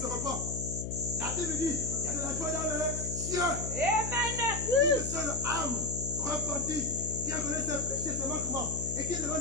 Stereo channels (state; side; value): noise; left; hum, 5 dB below the sound